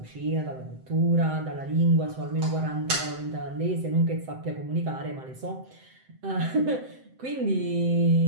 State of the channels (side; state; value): left; late; 7.7 ms